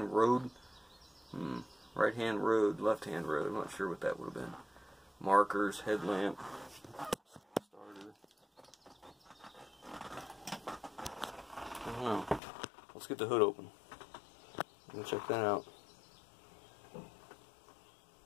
road. Right-hand road, left-hand road. I'm not sure what that would have been. Markers, headlamp, starter. I don't know. Let's get the hood open and check that out.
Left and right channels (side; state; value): right; drops out; at 12.4 s